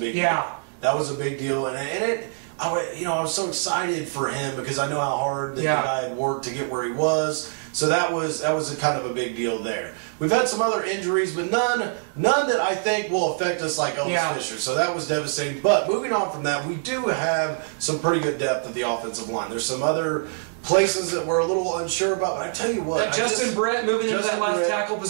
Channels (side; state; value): left; silent; 62 dB below the other